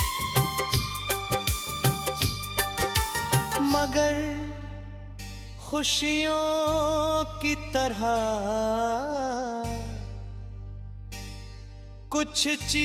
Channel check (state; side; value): identical; both; correlation 1.00